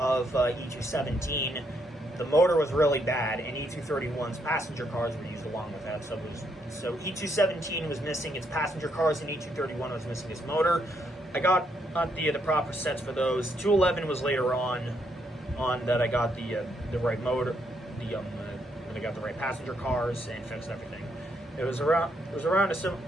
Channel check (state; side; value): normal; both; correlation 0.75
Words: E217. The motor was really bad, and E231's passenger cars were used along with that. So E217 was missing its passenger cars, and E231 was missing its motor. I got the proper sets for those. 211 was later on that I got the right motor, when I got the right passenger cars and fixed everything. It was around I